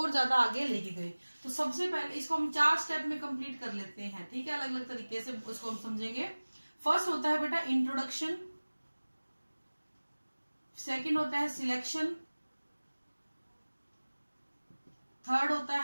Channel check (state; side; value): inverted; both; correlation -1.00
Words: ज्यादा आगे लेके गए। तो सबसे पहले इसको हम 4 स्टेप में कंप्लीट कर लेते हैं, ठीक है, अलग अलग तरीके से उसको हम समझेंगे। फर्स्ट होता है बेटा इंट्रोडक्शन, सेकंड होता है सिलेक्शन, थर्ड होता